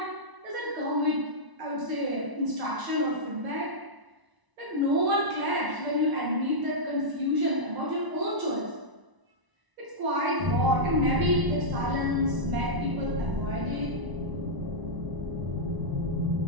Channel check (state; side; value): late; left; 1.0 ms